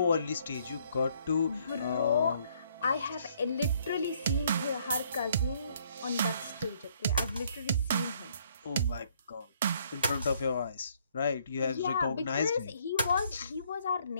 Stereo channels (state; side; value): inverted; both; correlation -0.66